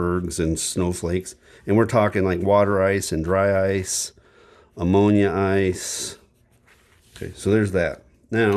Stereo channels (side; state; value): both; identical; correlation 1.00